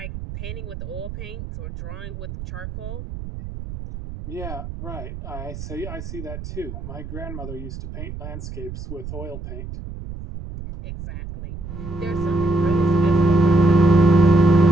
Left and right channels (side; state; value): right; noise; rumble, 9 dB below the sound